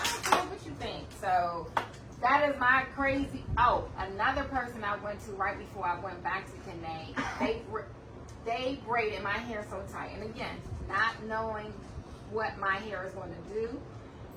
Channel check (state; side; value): identical; both; correlation 1.00